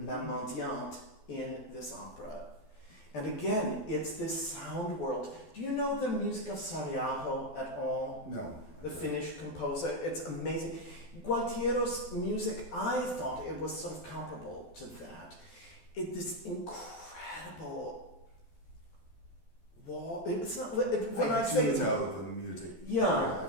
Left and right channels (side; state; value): right; late; 12 ms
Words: La Mendiante, in this opera. And again, it's this sound world. Do you know the music of Sariaho at all? No. The Finnish composer. It's amazing. Gualtiero's music, I thought it was sort of comparable to that. This incredible wall. It's not when I say it's know the music. Yeah,